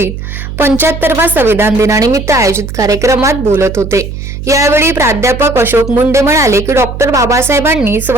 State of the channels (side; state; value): right; noise; hum, 8 dB below the sound